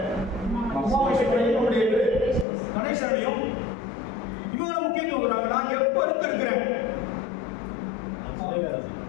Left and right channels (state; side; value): drops out; right; at 2.5 s